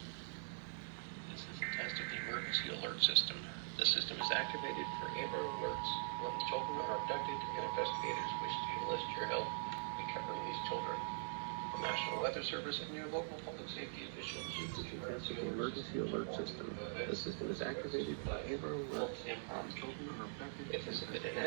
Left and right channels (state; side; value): silent; left; digital silence